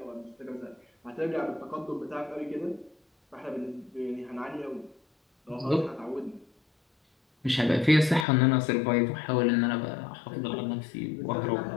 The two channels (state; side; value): drops out; right; at 8.2 s